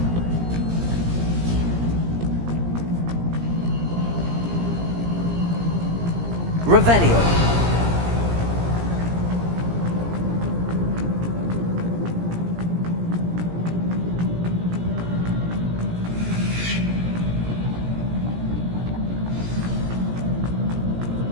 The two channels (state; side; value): late; left; 17 ms